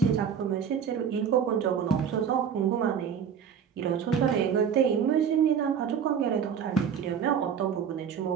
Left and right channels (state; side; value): quieter; left; 7.6 dB